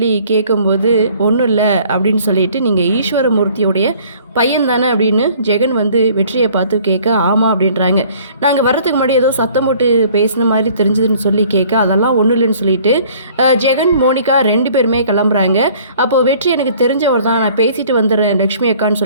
கேட்கும்போது ஒன்றும் இல்லை அப்படின்னு சொல்லிட்டு நீங்கள் ஈஸ்வரமூர்த்தியோடைய பையன் தானே அப்படின்னு ஜெகன் வந்து வெற்றியை பார்த்து கேட்க ஆமாம் அப்படின்றாங்க. நாங்கள் வர்றதுக்கு முன்னாடி ஏதோ சத்தம் போட்டு பேசின மாதிரி தெரிஞ்சதுன்னு சொல்லி கேட்க அதெல்லாம் ஒன்றும் இல்லைன்னு சொல்லிட்டு ஜெகன் மோனிகா ரெண்டு பேருமே கிளம்புறாங்க. அப்போது வெற்றி எனக்கு தெரிஞ்சவர் தான், நான் பேசிட்டு வந்துடுறேன் லக்ஷ்மி அக்கான்னு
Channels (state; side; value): inverted; both; correlation -0.55